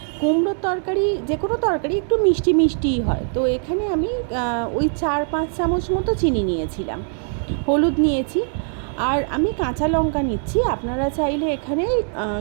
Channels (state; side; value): silent; left; 63 dB below the other